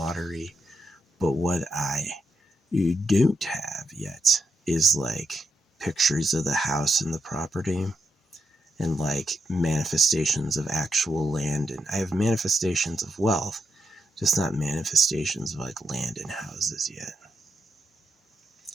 But what I don't have yet is like pictures of the house and the property, and like manifestations of actual land. And I have manifestations of wealth, just not manifestations of like land and houses yet.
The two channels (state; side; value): normal; both; correlation 0.83